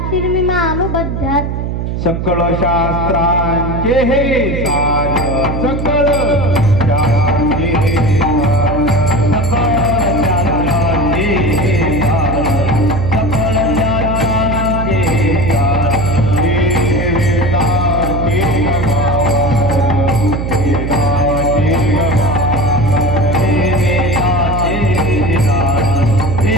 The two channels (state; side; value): noise; right; hum, 3 dB below the sound